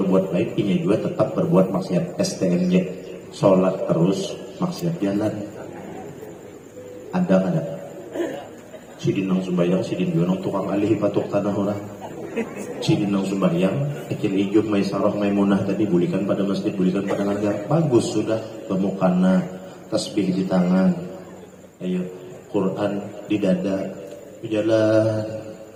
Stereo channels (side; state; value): both; identical; correlation 1.00